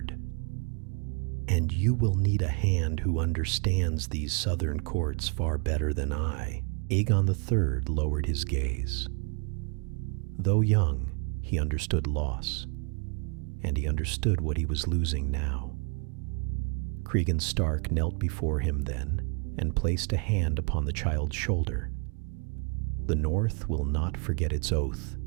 And you will need a hand who understands these southern courts far better than I." Aegon III lowered his gaze. Though young, he understood loss, and he understood what he was losing now. Cregan Stark knelt before him then and placed a hand upon the child's shoulder. "The North will not forget its oath,"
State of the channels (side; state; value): left; quieter; 36.1 dB